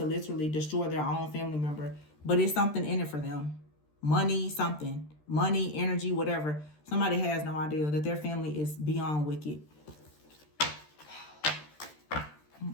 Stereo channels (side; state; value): right; late; 13 ms